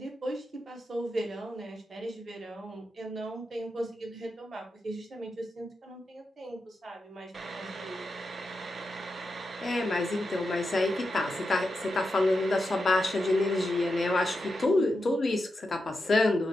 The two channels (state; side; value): normal; both; correlation 0.88